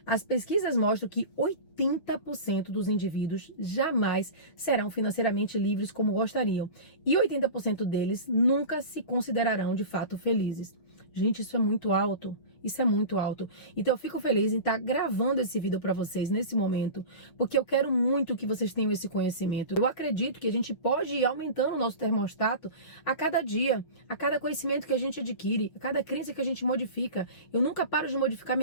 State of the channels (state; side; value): late; right; 6.2 ms